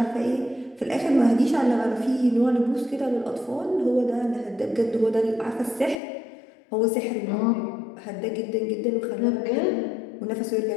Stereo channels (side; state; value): right; drops out; at 6.0 s